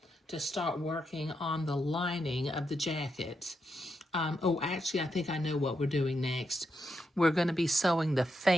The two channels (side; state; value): both; normal; correlation 0.83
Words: to start working on the lining of the jacket. Oh, actually, I think I know what we're doing next. We're going to be sewing the